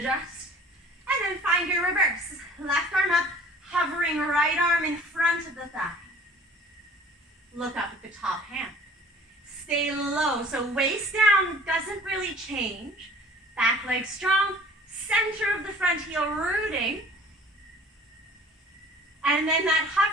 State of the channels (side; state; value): both; normal; correlation 0.48